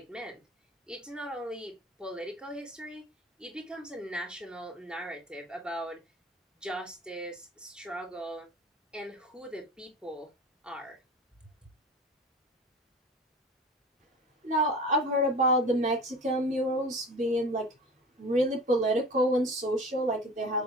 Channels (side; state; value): both; normal; correlation 0.37